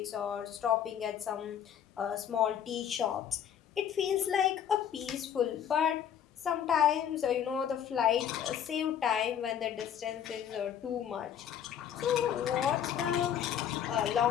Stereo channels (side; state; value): right; quieter; 9.2 dB